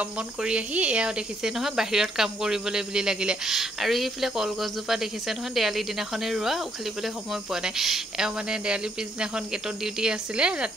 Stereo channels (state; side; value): normal; both; correlation 0.72